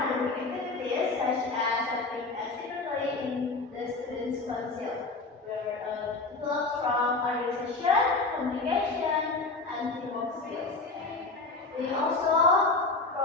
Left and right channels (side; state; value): right; quieter; 3.6 dB